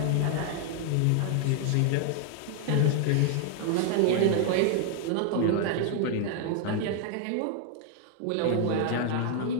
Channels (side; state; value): both; different; correlation 0.00